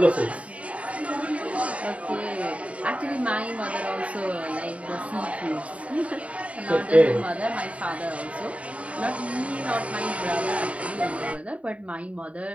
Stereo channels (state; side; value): late; left; 0.065 ms